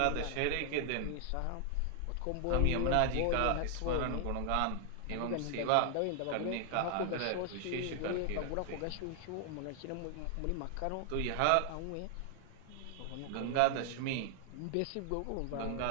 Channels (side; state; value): both; different; correlation 0.00